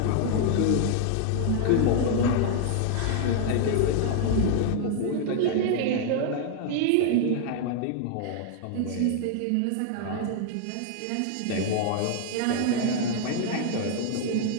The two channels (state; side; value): different; both; correlation 0.00